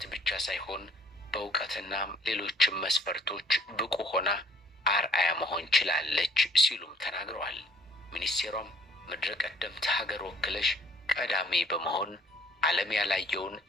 ብቻ ሳይሆን በእውቀትና ሌሎችም መስፈርቶች ብቁ ሆና አርአያ መሆን ችላለች ሲሉም ተናግረዋል። ሚኒስቴሯም ምድረ ቀደምት ሀገር ወክለሽ ቀዳሚ በመሆን ዓለም ያላየውን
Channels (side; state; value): both; normal; correlation 0.59